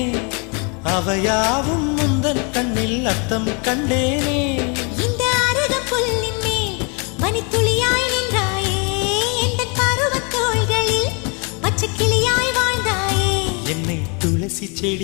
அவையாவும் முந்தன் கண்ணில் அர்த்தம் கண்டேனே. இந்த அருகம் புல்லின் மேல் மணித்துளியாய் நின்றாயே, எந்த பருவத் தோள்களில் பச்சை கிளியாய் வாழ்ந்தாயே. என்னை துளசி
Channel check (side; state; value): right; quieter; 34.3 dB